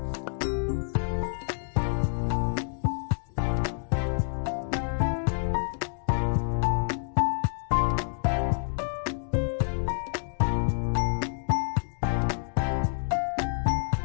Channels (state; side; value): silent; right; 59 dB below the other